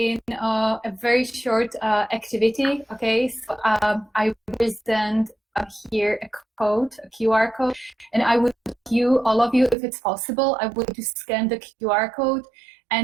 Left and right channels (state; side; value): drops out; left; at 9.8 s